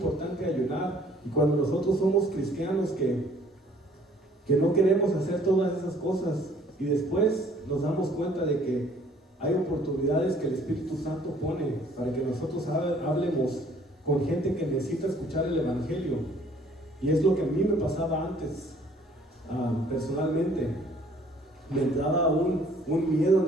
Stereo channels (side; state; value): both; normal; correlation 0.58